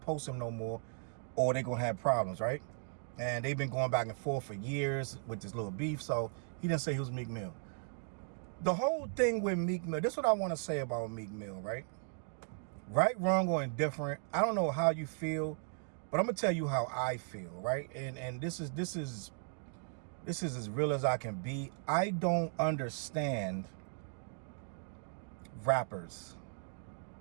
post him no more or they're gonna have problems, right? And they've been going back and forth for years with this little beef, so he didn't say he was Meek Mill. The whole thing with Meek Mill, this is what I want to say about Meek Mill, right? Right, wrong, or indifferent. I don't know how you feel, but I'm gonna tell you how I feel, right? And this is as real as I can be. I don't understand rappers,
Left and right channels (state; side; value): silent; left; 53 dB below the other